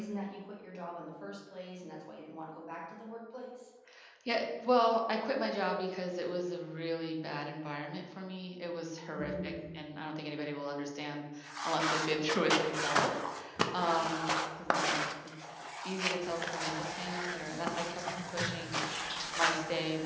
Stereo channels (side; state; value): both; identical; correlation 1.00